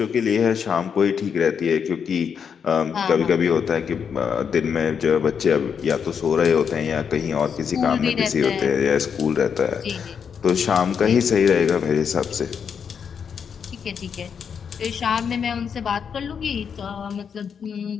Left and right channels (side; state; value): right; quieter; 7.0 dB